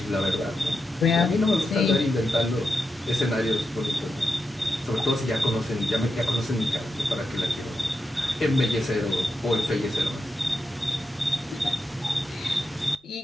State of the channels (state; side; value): normal; both; correlation 0.87